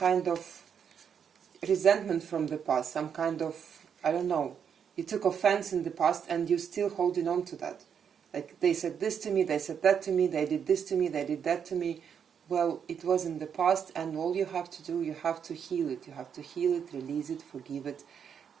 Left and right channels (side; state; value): left; quieter; 7.6 dB